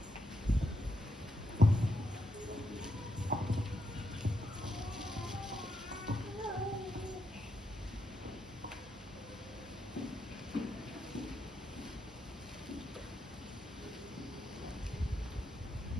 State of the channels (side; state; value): both; normal; correlation 0.81